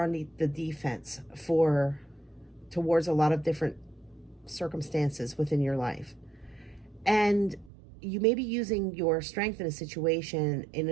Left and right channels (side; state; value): left; drops out; at 7.7 s